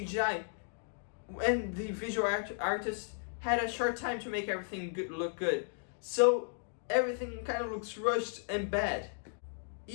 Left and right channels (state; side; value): silent; right; digital silence